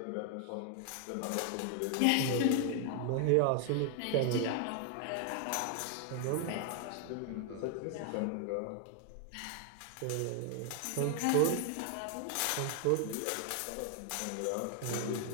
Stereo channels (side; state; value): both; different; correlation 0.00